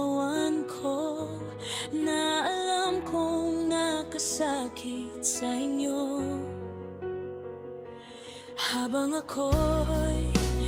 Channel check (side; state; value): both; identical; correlation 1.00